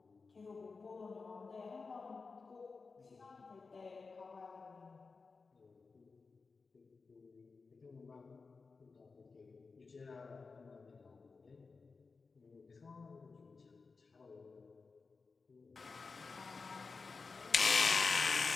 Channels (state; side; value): quieter; right; 4.4 dB